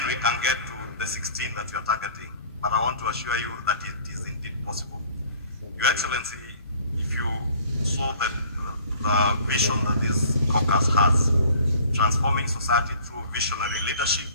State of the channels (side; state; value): both; inverted; correlation -0.51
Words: we can get to the 16 that we are targeting. But I want to assure you that it is indeed possible. Your Excellency, if you saw the vision that this caucus has, transforming society through visionary leadership